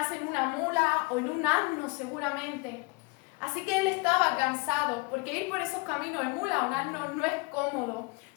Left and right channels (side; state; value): right; quieter; 28.4 dB